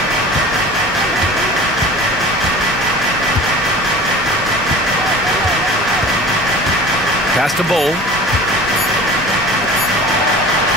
Pass to Bull.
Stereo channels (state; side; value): normal; both; correlation 0.40